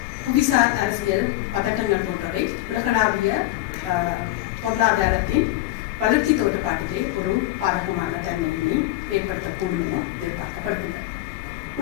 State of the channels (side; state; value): right; quieter; 16.8 dB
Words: புவிசார் அரசியல் பதட்டங்கள் போன்றவை உலகளாவிய பொருளாதாரத்தின் வளர்ச்சி தோற்றப்பாட்டிலே ஒரு பாதகமான தன்மையினை ஏற்படுத்தக்கூடும் என எதிர்பார்க்கப்படுகின்றது.